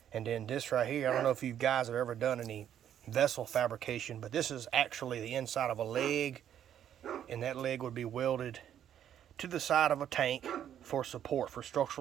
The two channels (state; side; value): quieter; left; 10.1 dB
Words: And then this right here, I don't know if you guys have ever done any vessel fabrication, but this is actually the inside of a leg, and that leg would be welded to the side of a tank for support, for